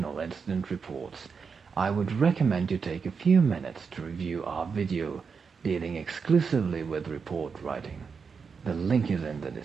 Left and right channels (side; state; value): left; quieter; 5.6 dB